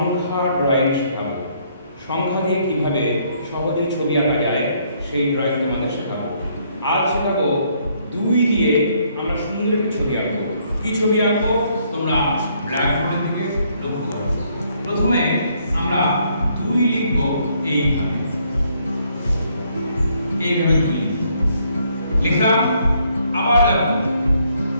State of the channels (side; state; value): both; inverted; correlation -0.69